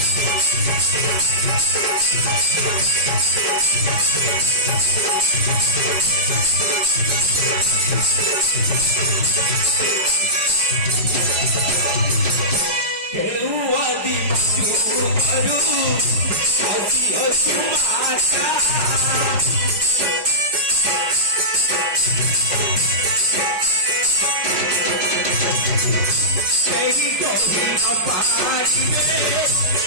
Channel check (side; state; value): left; late; 5.2 ms